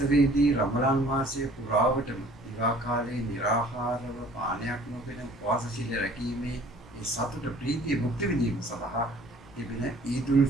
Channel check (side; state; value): both; normal; correlation 0.53